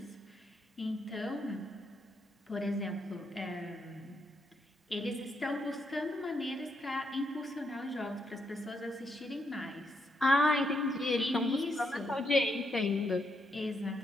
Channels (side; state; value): both; normal; correlation 0.79